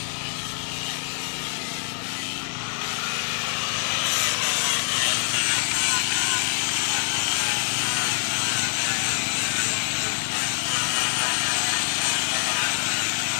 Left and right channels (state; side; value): silent; right; digital silence